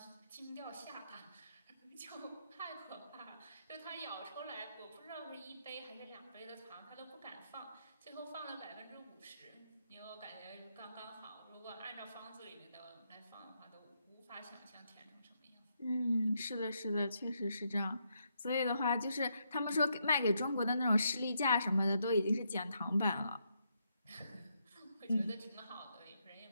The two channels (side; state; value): both; inverted; correlation -0.79